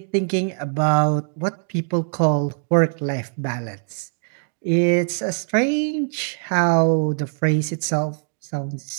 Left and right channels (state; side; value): silent; left; digital silence